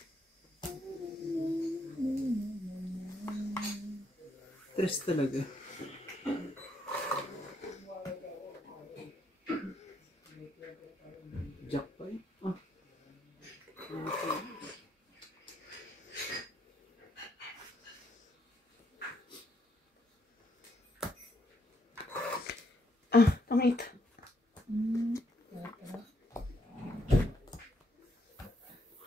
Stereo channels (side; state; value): both; normal; correlation 0.74